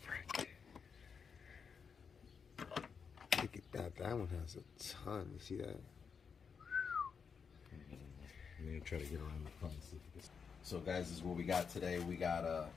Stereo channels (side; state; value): right; quieter; 6.1 dB